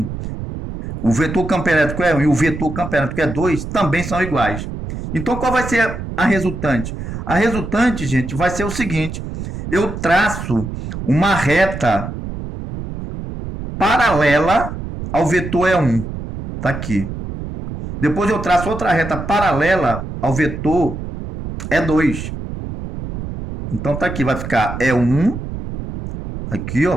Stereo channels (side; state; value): right; noise; rumble, 8 dB below the sound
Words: O vetor campo elétrico é 1 e o vetor campo elétrico é 2, também são iguais. Então qual vai ser a resultante? A resultante, gente, vai ser o seguinte: eu traço uma reta paralela ao vetor E1. Está aqui. Depois eu traço outra reta paralela ao vetor E2. Então tá aqui, vai ficar E1, aqui ó,